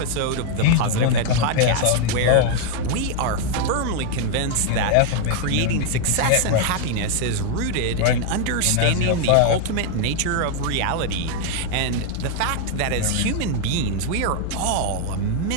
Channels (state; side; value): different; both; correlation 0.00